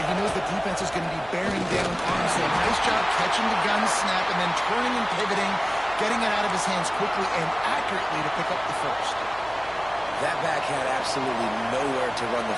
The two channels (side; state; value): right; noise; hum, 22 dB below the sound